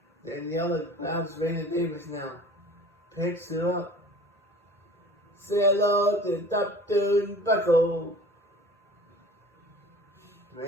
Daniela grabs Raina Davis now. Picks her up. Say hello to Dr. Buckle.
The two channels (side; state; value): both; normal; correlation 0.44